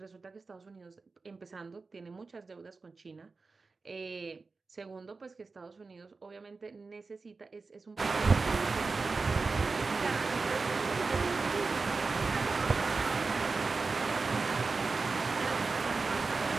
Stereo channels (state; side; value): quieter; left; 4.1 dB